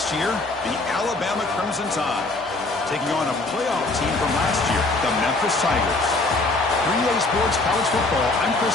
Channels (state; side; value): quieter; right; 3.1 dB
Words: year, the Alabama Crimson Tide, taking on a playoff team from last year, the Memphis Tigers. 3A Sports College Football, I'm